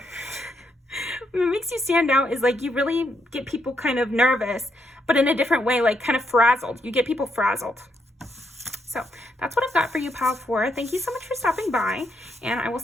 What makes you stand out is like you really get people kind of nervous, but in a different way, like kind of frazzled. You get people frazzled. So that's what I've got for you, Pal 4. Thank you so much for stopping by, and I will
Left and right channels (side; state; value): both; normal; correlation 0.77